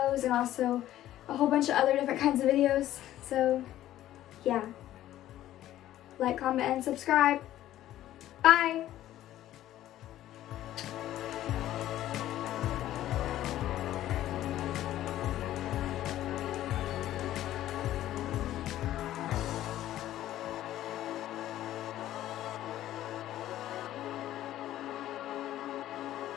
and also a whole bunch of other different kinds of videos. So, yeah. Like, comment, and subscribe. Bye!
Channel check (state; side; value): quieter; right; 13.4 dB